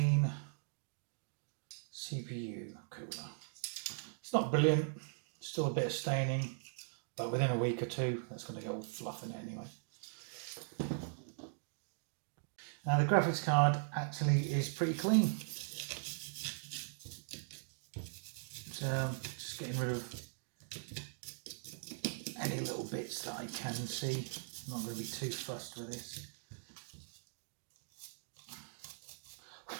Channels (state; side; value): silent; left; digital silence